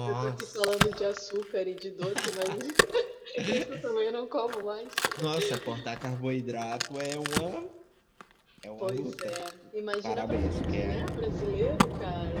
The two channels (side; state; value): both; identical; correlation 1.00